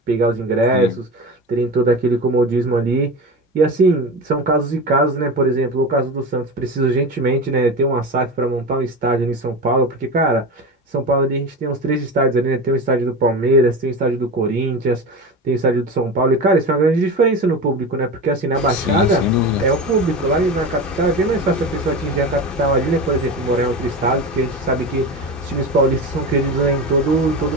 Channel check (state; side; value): normal; both; correlation 0.26